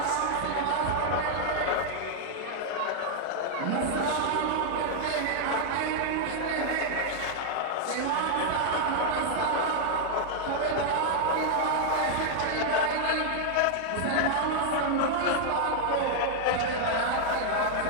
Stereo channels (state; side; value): different; both; correlation -0.01